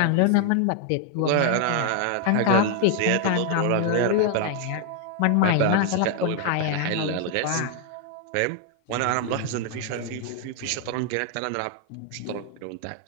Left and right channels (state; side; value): different; both; correlation 0.00